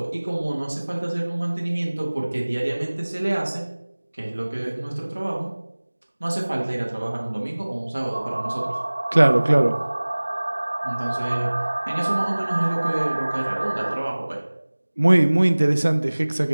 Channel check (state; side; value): inverted; both; correlation -1.00